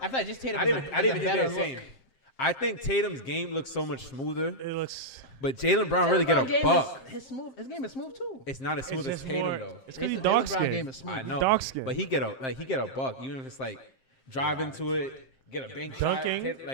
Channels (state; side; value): late; right; 7.6 ms